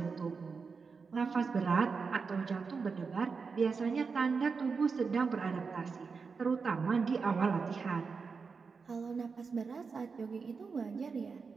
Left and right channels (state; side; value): quieter; left; 5.1 dB